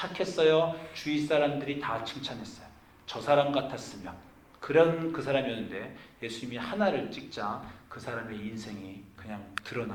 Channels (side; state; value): both; identical; correlation 1.00